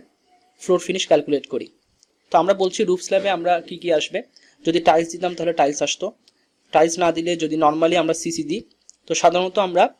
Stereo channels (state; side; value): identical; both; correlation 1.00